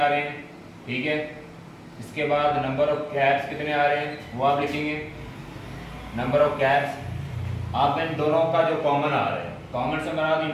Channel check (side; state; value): both; identical; correlation 1.00